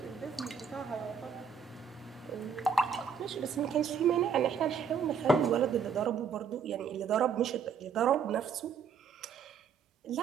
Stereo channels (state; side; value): quieter; left; 6.4 dB